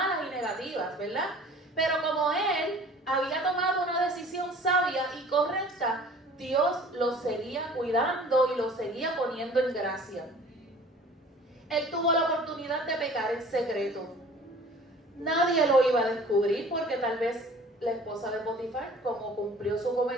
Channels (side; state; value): both; normal; correlation 0.48